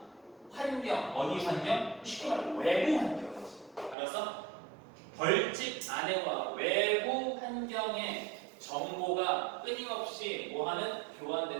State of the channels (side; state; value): left; drops out; at 4.0 s